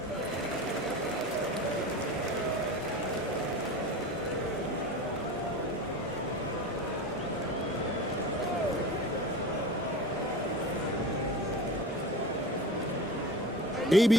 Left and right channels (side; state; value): both; normal; correlation 0.33